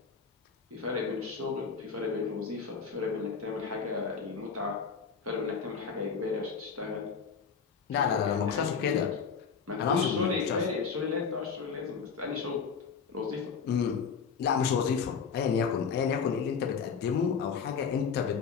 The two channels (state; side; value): quieter; right; 6.0 dB